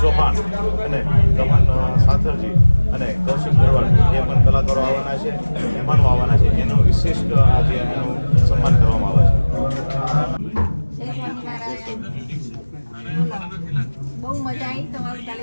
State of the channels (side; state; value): both; inverted; correlation -1.00